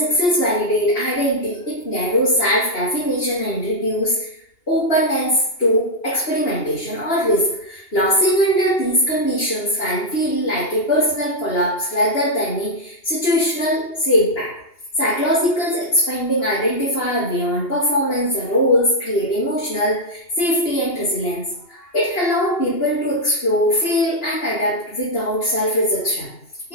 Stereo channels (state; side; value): late; right; 2.8 ms